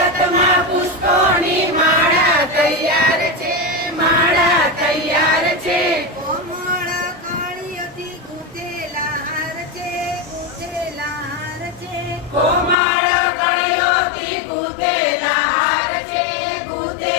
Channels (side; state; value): right; drops out; at 12.8 s